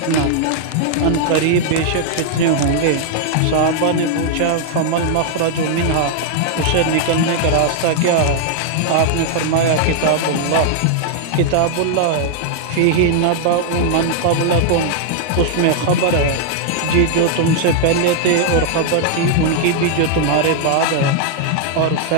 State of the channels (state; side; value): different; both; correlation -0.01